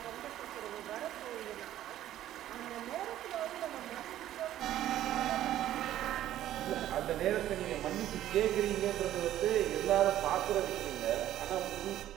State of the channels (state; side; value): quieter; left; 12.7 dB